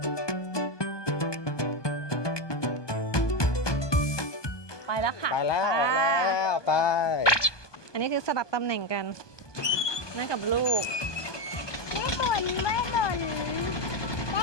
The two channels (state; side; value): late; right; 1.2 ms